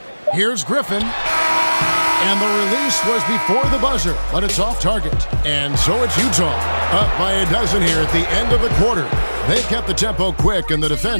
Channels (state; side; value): inverted; both; correlation -1.00